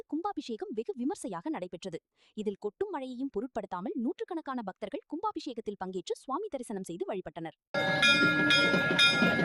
கும்பாபிஷேகம் வெகு விமர்சையாக நடைபெற்றது. இதில் கொட்டும் மழையையும் பொருட்படுத்தாமல் நூற்றுக்கணக்கான பக்தர்கள் கும்பாபிஷேகத்தில் பங்கேற்று சுவாமி தரிசனம் செய்து வழிபட்டனர்.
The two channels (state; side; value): identical; both; correlation 1.00